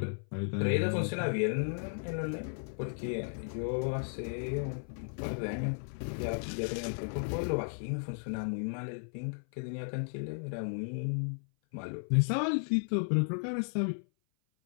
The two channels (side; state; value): right; silent; 55 dB below the other